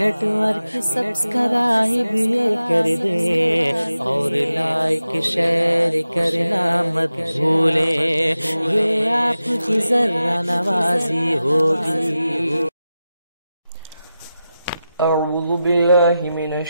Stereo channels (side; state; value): both; inverted; correlation -0.92